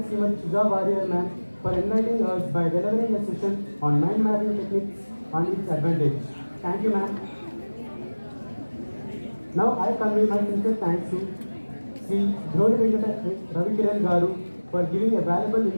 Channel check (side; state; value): both; inverted; correlation -1.00